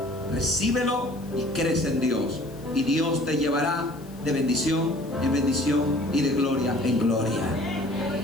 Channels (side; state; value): left; noise; hiss, 25 dB below the sound